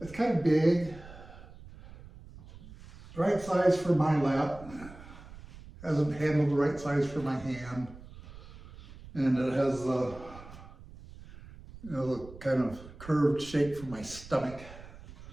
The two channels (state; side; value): noise; right; rumble, 17 dB below the sound